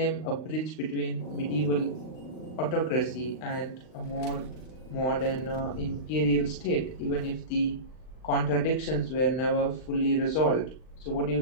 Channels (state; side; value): late; right; 39 ms